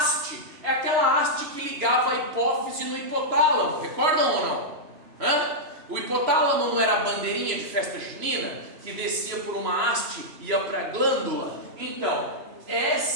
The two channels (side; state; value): left; late; 2.9 ms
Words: é aquela haste que ligava a hipófise no hipotálamo. Recordam ou não? O hipotálamo não era a bandeirinha de festa junina que descia por uma haste e ia para a glândula? Então,